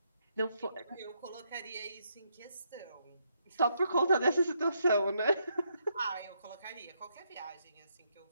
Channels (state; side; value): inverted; both; correlation -0.77